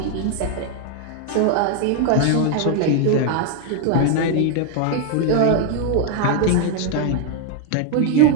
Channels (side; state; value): both; different; correlation 0.00